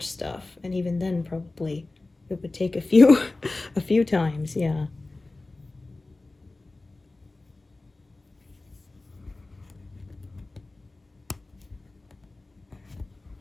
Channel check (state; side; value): quieter; right; 3.1 dB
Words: stuff, and even then probably it would take a few a few times. Yeah.